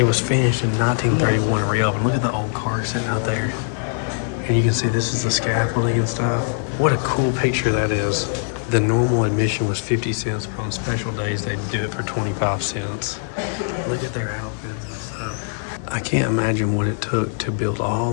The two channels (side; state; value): right; silent; 64 dB below the other